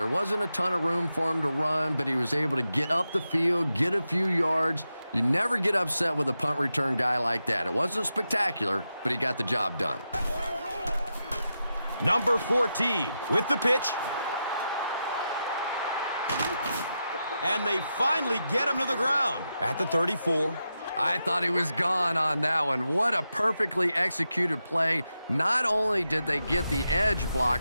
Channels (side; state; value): both; inverted; correlation -0.88